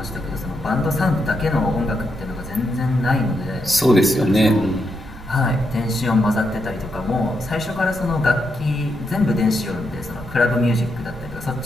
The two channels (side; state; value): right; noise; rumble, 16 dB below the sound